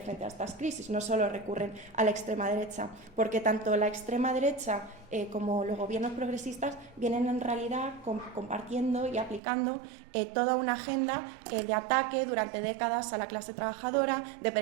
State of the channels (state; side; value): drops out; left; at 9.4 s